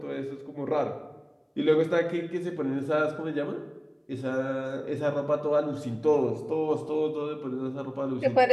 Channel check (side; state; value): both; identical; correlation 1.00